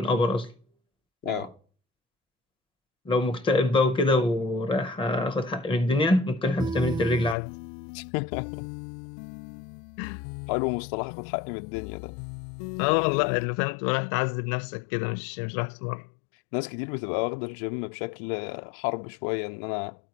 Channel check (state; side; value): drops out; right; at 7.4 s